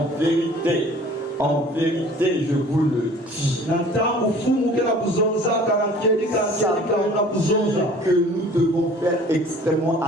vérité, je vous le dis. Ça veut dire que nous devons faire extrêmement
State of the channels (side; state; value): both; normal; correlation 0.49